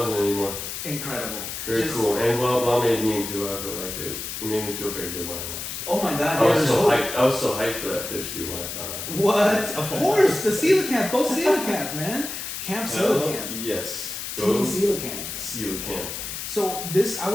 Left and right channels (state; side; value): noise; left; hiss, 6 dB below the sound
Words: anymore. Incredible. Very cool. And well, made me too. I feel like it made me feel very good when I watched it. Oh my god. I was so hyped. I was so hyped for that fish, dude, when I found out. What? Of course, the coelacanth. Go coelacanth, man. Camp coelacanth. Yes. Team coelacanth. Coelacanth. So this, I